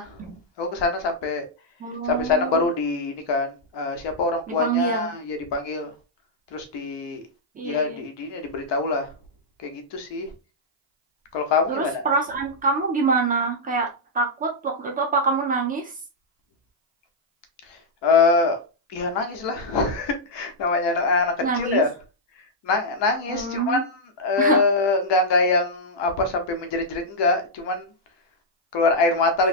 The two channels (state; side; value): normal; both; correlation -0.06